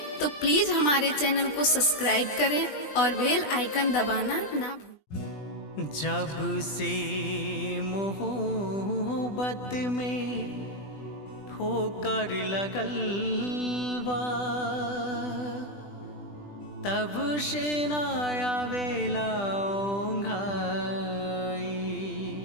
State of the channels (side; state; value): right; late; 20 ms